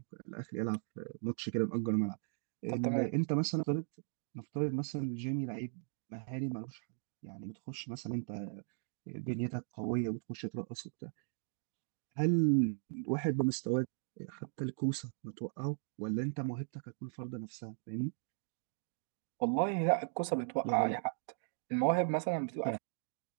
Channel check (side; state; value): left; silent; digital silence